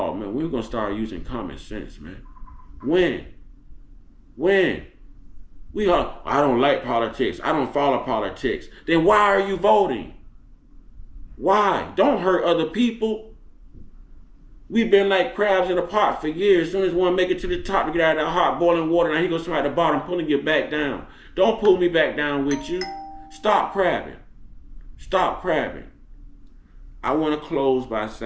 man, we're gonna start using common sense, man. When? When? I don't like politics. I don't follow politics. Then why are you voting? Why? Don't hurt other people. We've been like crabs in a pot for years. As soon as one make it to the top to get out of that hot boiling water, now he goes somebody at the bottom pulling you back down. Don't pull me back down with you. Stop crabbing. Stop crabbing. I want to close by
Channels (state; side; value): identical; both; correlation 1.00